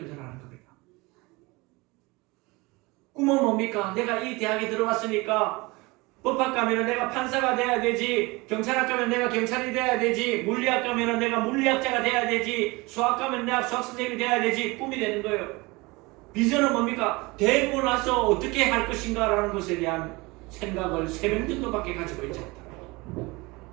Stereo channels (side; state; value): left; quieter; 24.0 dB